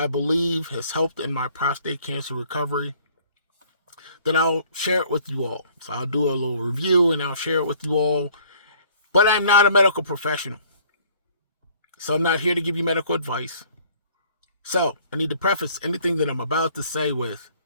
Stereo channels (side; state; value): both; inverted; correlation -0.57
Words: believe has helped in my prostate cancer recovery, then I'll share it with you all. So I'll do a little review and I'll share it with you all. But I'm not a medical professional. So I'm not here to give you medical advice. So I need to preface anything that I'm about to say with,